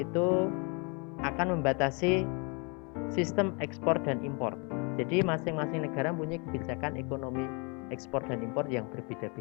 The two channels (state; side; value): quieter; right; 32.9 dB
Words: itu akan membatasi sistem ekspor dan impor. Jadi masing-masing negara punya kebijakan ekonomi ekspor dan impor yang